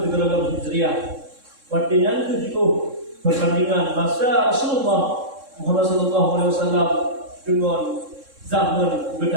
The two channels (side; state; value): left; late; 3.7 ms